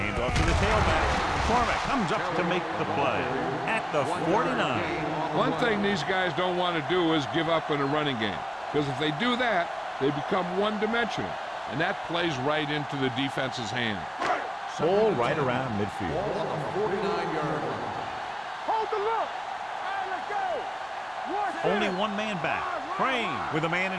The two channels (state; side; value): identical; both; correlation 1.00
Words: off to the tailback. McCormick comes up to make the play at the 49. One thing these guys don't want to do is give up in a running game. Because if they do that, they become one-dimensional. And that plays right into the defense's hand. Ball right around midfield. Ball on the 49-yard line. Hold the look. All right, let's go. Only one man back. Crane with a man